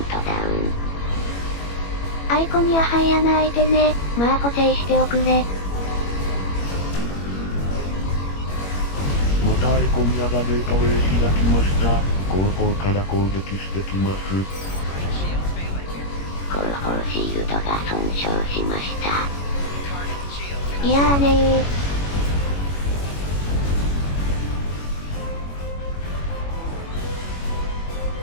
ダウン。アイコにはハイ穴開いてね。まあ補正しておくれ。またイコニアがゲートウェイ開きました。後方から攻撃してきます。後方シールドが損傷しました。いやーね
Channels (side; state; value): right; late; 21 ms